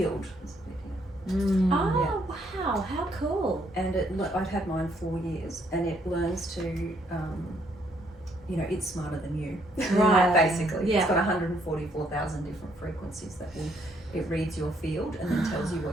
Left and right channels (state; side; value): normal; both; correlation 0.70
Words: Oh wow, how cool! And I've had mine 4 years, and it learns to, you know, it's smarter than you, Right. Basically, Yeah. It's got 144,000 different frequencies that it reads your field and then tells you